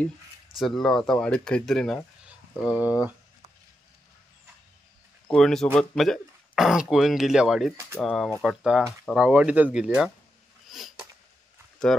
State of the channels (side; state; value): both; normal; correlation 0.86